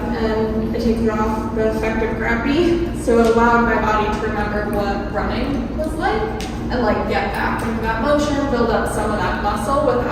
and it takes off the effect of gravity. So it allowed my body to remember what running was like and get back into that motion, build up some of that muscle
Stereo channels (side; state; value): both; identical; correlation 1.00